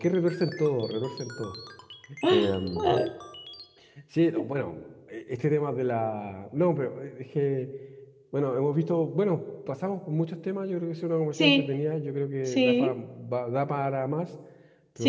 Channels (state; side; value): identical; both; correlation 1.00